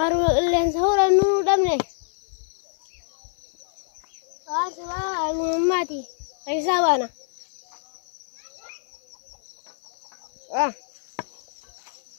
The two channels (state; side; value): silent; right; 61 dB below the other